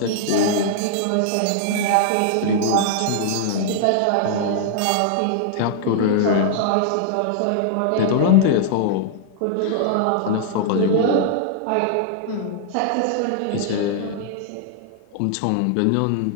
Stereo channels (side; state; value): both; different; correlation -0.01